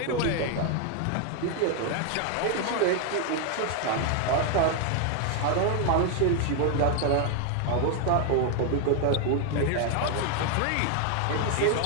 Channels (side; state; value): both; different; correlation 0.01